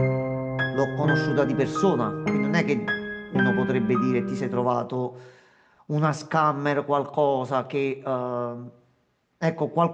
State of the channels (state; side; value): identical; both; correlation 1.00